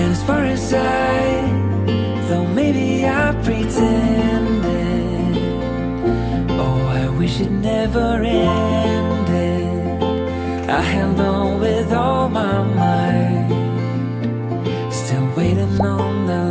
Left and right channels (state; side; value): identical; both; correlation 1.00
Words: as far as though maybe I pretended, oh, I wish it never ended. I held on with all my might, still waiting on the